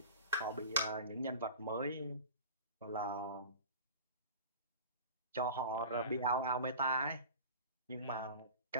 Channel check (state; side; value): inverted; both; correlation -0.36